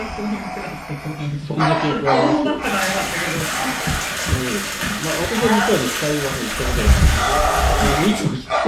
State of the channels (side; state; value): both; identical; correlation 1.00